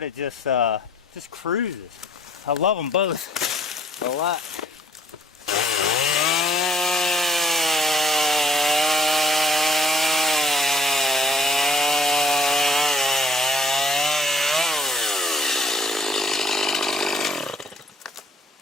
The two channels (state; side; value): normal; both; correlation 0.60